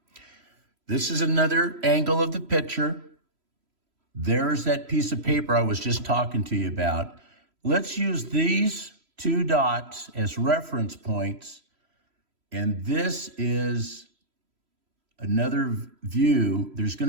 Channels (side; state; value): left; late; 3.0 ms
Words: This is another angle of the picture. There's that piece of paper I was just talking to you about. Let's use these two dots as reference points. And this is another view. There's going